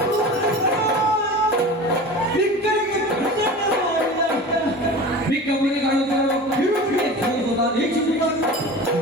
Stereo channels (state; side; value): normal; both; correlation 0.35